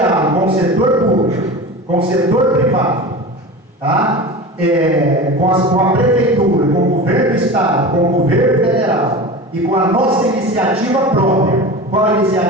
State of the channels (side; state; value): both; normal; correlation 0.31